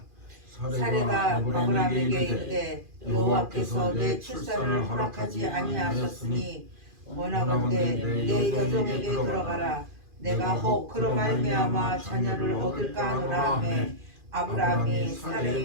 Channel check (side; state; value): left; late; 2.5 ms